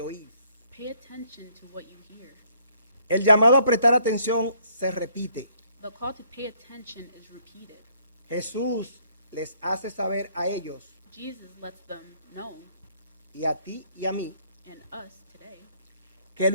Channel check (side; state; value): both; inverted; correlation -0.65